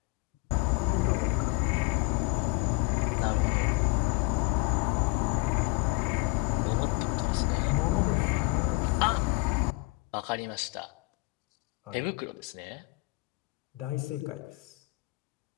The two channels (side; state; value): right; quieter; 25.9 dB